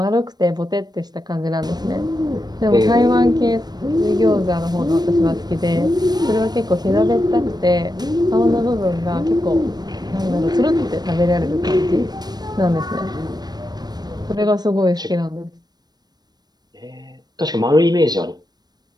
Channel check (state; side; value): late; left; 0.19 ms